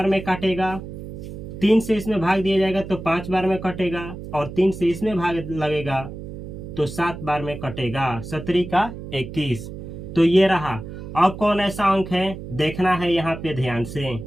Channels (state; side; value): noise; right; hum, 10 dB below the sound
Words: में काटेगा, 3 से इसमें भाग दिया जाएगा तो 5 बार में कटेगा, और 3 से इसमें भाग लगेगा तो 7 बार में कटेगा। 17 का 21। तो ये रहा। अब कौन ऐसा अंक है देखना है यहाँ पे ध्यान से,